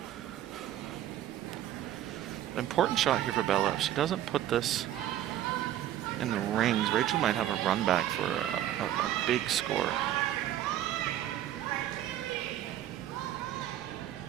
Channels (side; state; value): left; quieter; 12.2 dB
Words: Important shot here for Bella. If she doesn't put this in the rings, Rachel might have a run back for a big score.